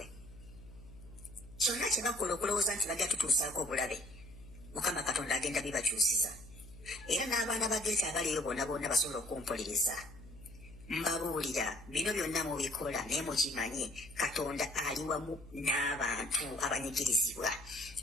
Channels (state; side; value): noise; left; hum, 19 dB below the sound